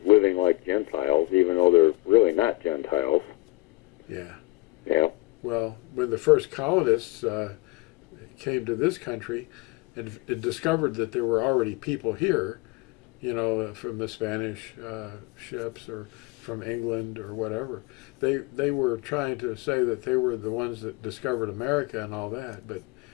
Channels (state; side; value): quieter; right; 21.1 dB